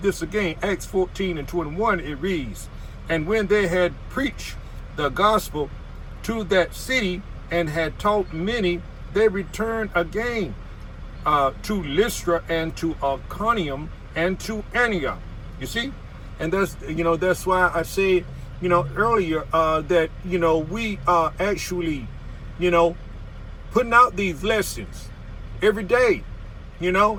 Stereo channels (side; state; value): both; identical; correlation 1.00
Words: this again, Acts 14 and 21. It reads, "And when they had preached the gospel to that city and had taught many, they returned again to Lystra and to Iconium and to Antioch." You see, and that's why I said earlier that we are actually putting out these lessons every day,